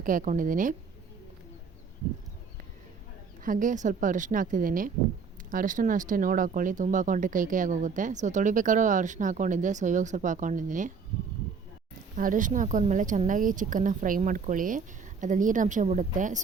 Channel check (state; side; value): quieter; left; 5.5 dB